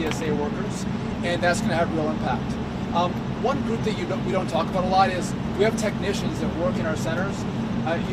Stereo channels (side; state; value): both; identical; correlation 1.00